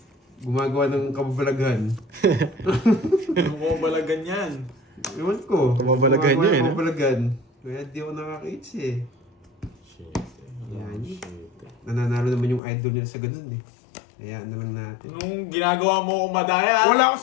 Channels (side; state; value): right; drops out; at 12.6 s